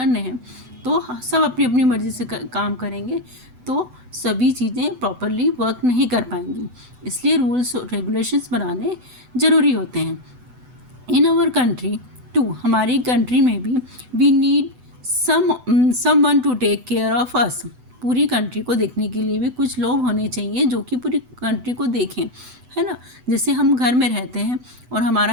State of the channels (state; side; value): late; left; 8.0 ms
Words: हैं, तो सब अपनी अपनी मर्ज़ी से काम करेंगे, तो सभी चीज़ें प्रॉपरली वर्क नहीं कर पाएंगी. इसलिए रूल्स और रेगुलेशंस बनाने ज़रूरी होते हैं. इन आवर कंट्री टू, हमारी कंट्री में भी, we need someone to take care of us. पूरी कंट्री को देखने के लिए भी कुछ लोग होने चाहिए जो कि पूरी कंट्री को देखें, है ना. जैसे हम घर में रहते हैं और